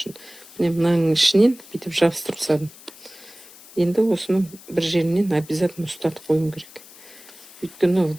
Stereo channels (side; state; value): left; noise; hiss, 21 dB below the sound